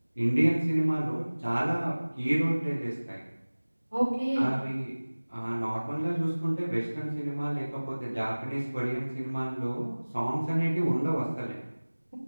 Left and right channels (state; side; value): inverted; both; correlation -1.00